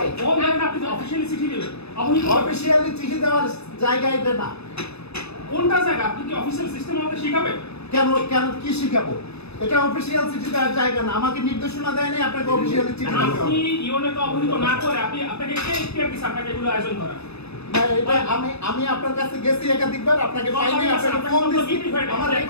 আপনি অফিশিয়ালি চিঠি দেবেন, অফিশিয়ালি চিঠি দেওয়ার জায়গা এটা না। কোনটা জায়গা? আপনি কি অফিশিয়াল সিস্টেম আমাদের শিখাবেন? কেন কি শিখাবো? এটা অফিশিয়াল চিঠি দেওয়ার জায়গা না। আমাকে নির্দেশনা দেয়নি আপনাকে অফিশিয়ালি চিঠি দিতে হবে। আপনি ইউনেকে অবহিত না করে আপনাকে কে ইখতিয়ার দিয়েছে আপনাকে এগুলো আয়োজন করা? না, এটা আমি আপনার কাছে গেছি একাধিকবার, আপনাকে পাইনি, আপনাকে ফোন দিছি, আমার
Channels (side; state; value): right; late; 0.79 ms